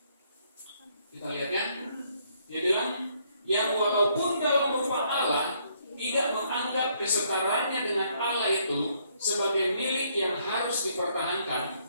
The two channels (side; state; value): both; inverted; correlation -0.69